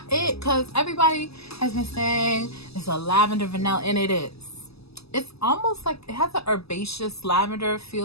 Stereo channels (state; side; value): late; right; 0.78 ms